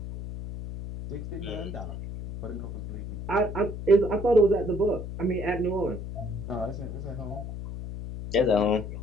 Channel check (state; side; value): noise; left; hum, 8 dB below the sound